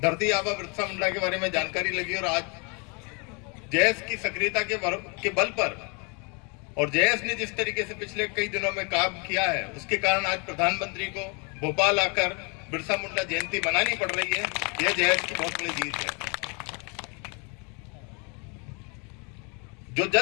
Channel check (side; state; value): right; quieter; 33.3 dB